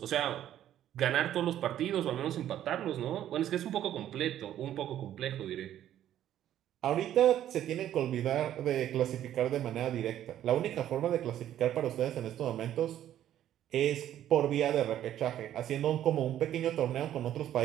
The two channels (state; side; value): quieter; left; 11.6 dB